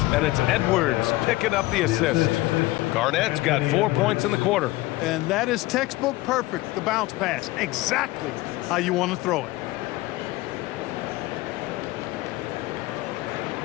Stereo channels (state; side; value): quieter; right; 19.0 dB